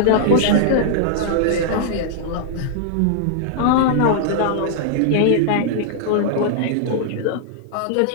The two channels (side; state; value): both; different; correlation -0.01